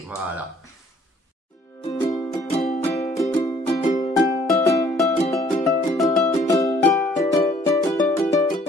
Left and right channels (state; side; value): normal; both; correlation 0.59